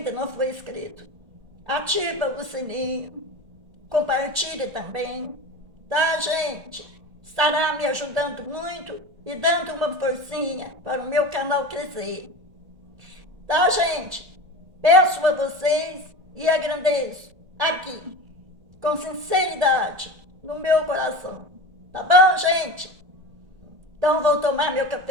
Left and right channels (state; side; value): late; left; 1.6 ms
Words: não for inscrito. Ativa o sininho, compartilhe também, tá, gente? Estará me ajudando muito e dando uma forcinha para o meu canal crescer. Tá, gente? Peço a vocês e agradeço aqui, com sinceridade, no meu coração. Tá bom, gente? Então vou tomar meu